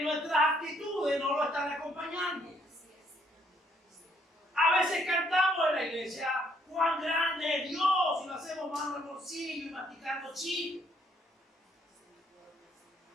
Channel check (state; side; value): normal; both; correlation 0.68